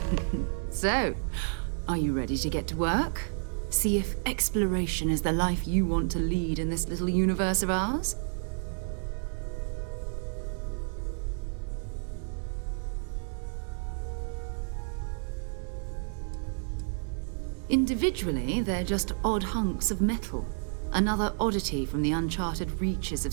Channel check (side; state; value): left; silent; 58 dB below the other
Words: So, are you ready to get to work? See if exploration is the life you want to lead in this little universe of ours? Individually, they're just odd hunks of metal. Another oddity from the uncharted reaches